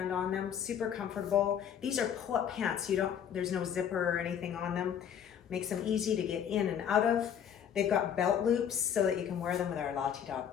on them, super comfortable. These are pull-up pants. There's no zipper or anything on them. Makes them easy to get in and out of. They've got belt loops so that you can wear them with our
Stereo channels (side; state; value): right; quieter; 8.7 dB